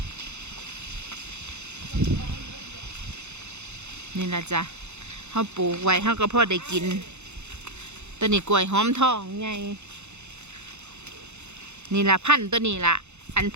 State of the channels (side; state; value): left; late; 0.82 ms